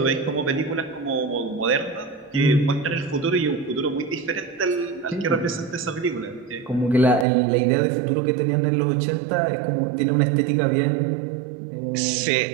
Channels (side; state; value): left; drops out; at 7.2 s